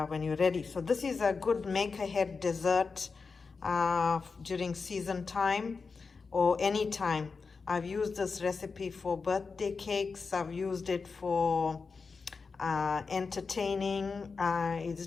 when you're ready. So this is a good make-ahead dessert during season time or any time. I've used this recipe for birthday cakes. I've used it for entertaining. It's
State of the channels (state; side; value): quieter; right; 4.7 dB